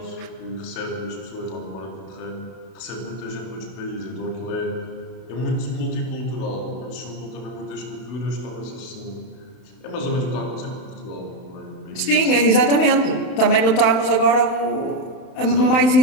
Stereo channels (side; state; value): right; late; 31 ms